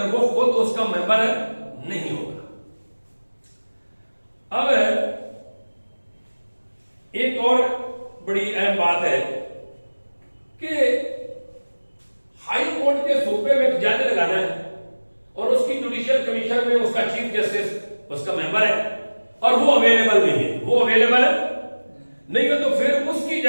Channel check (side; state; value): both; inverted; correlation -1.00